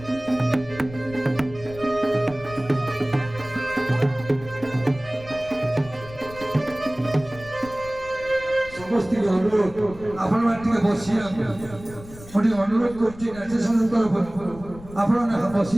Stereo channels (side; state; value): left; noise; rumble, 17 dB below the sound